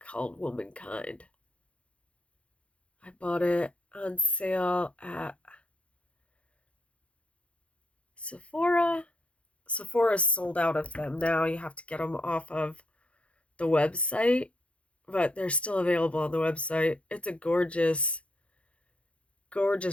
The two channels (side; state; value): right; late; 0.061 ms